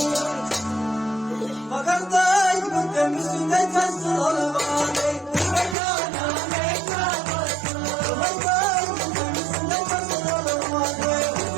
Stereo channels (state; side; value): drops out; left; at 5.8 s